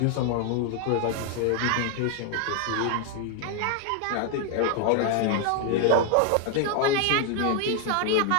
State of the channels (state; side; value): different; both; correlation 0.00